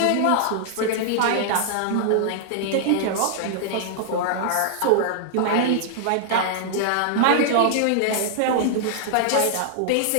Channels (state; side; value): different; both; correlation -0.01